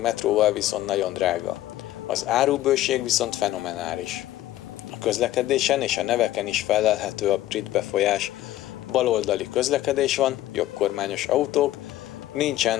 metróval viszont nagyon drága. Az árubőség viszont fenomenális. A közlekedésen és a neveken is fellelhető a brit befolyás. Baloldali közlekedés van, jobbkormányos autók,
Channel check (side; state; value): right; quieter; 14.4 dB